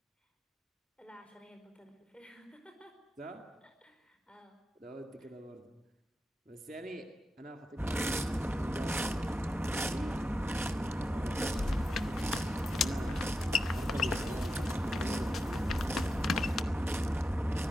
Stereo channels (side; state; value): both; normal; correlation 0.89